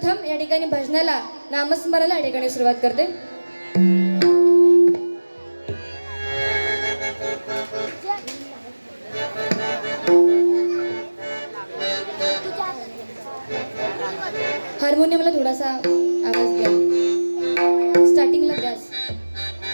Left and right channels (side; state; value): both; inverted; correlation -1.00